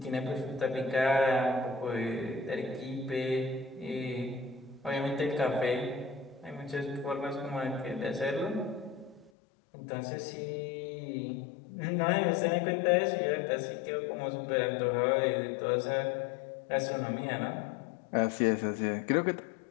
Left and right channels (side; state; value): right; drops out; at 9.3 s